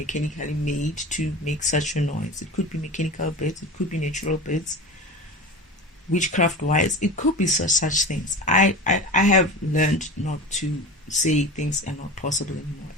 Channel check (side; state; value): both; normal; correlation 0.30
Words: made to make such a noise. It could be mechanical bits. It could be natural bits. Witchcraft-wise, it could be such things. I have learned not to say things are not possible anymore.